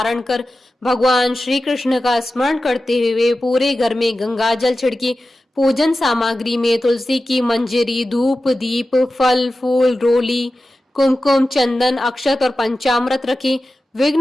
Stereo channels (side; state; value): both; normal; correlation 0.94